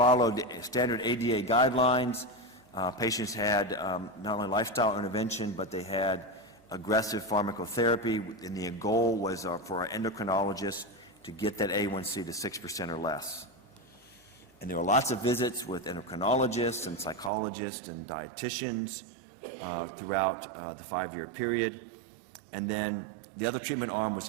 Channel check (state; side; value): drops out; left; at 17.3 s